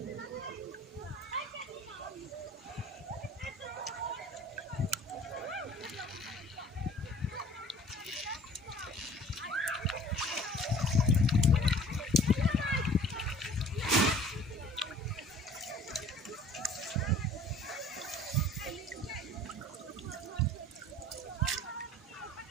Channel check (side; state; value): both; normal; correlation 0.49